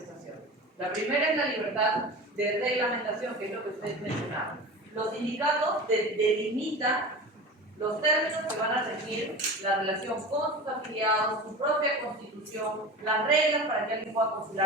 La primera es la libertad de reglamentación, que es lo que ustedes mencionaron. Los sindicatos delimitan los términos que van a regir la relación con sus afiliados, su propia constitución, las reglas para que alguien pueda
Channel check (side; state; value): both; normal; correlation 0.32